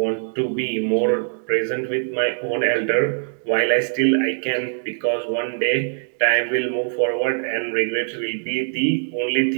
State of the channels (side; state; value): left; silent; digital silence